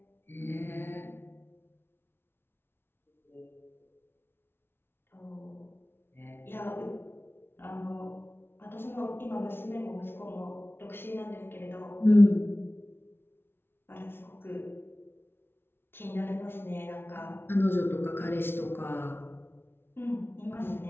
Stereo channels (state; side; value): late; right; 0.11 ms